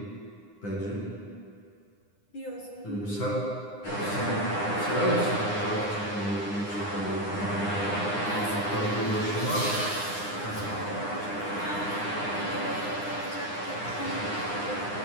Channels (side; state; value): right; late; 9.8 ms